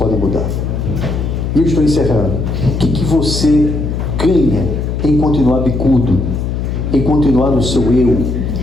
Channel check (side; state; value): left; noise; hum, 2 dB below the sound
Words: mudar. E eu estou encerrando. O que você ganha em continuar bicudo, em continuar no seu eu,